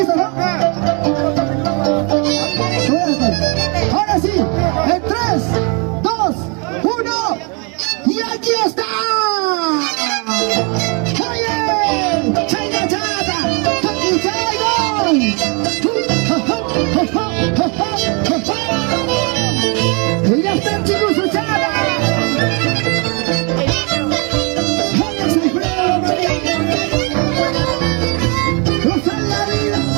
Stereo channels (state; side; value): quieter; left; 33.6 dB